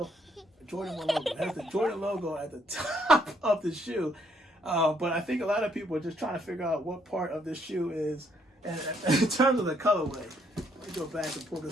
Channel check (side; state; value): both; normal; correlation 0.70